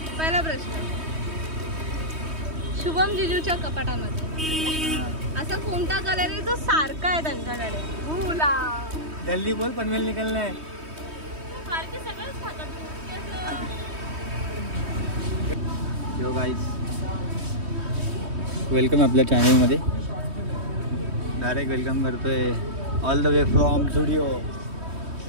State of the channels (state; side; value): late; left; 3.2 ms